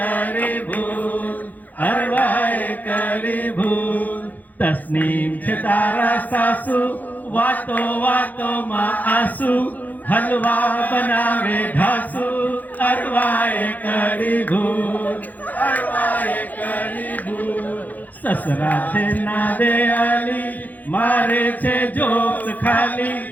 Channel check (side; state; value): right; late; 0.082 ms